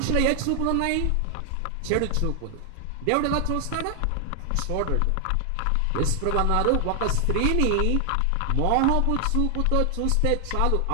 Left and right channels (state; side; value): different; both; correlation 0.00